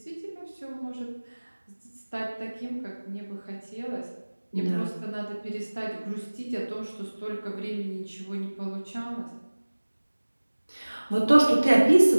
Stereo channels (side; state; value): both; inverted; correlation -1.00